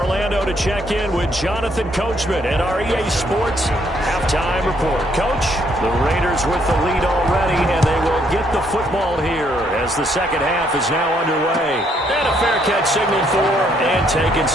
to check in with Jonathan Coachman at our EA Sports Halftime Report. Coach, the Raiders with the lead already, and they will get the football here as the second half is now underway. And a fair catch signaled for and taken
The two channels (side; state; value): both; normal; correlation 0.70